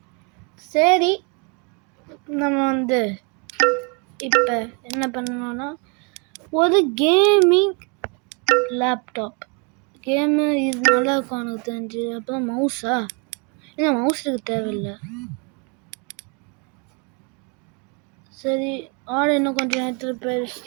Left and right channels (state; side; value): quieter; left; 34.2 dB